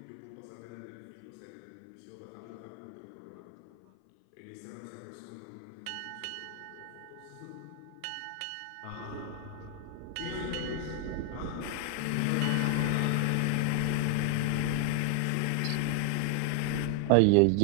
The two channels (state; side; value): different; both; correlation 0.00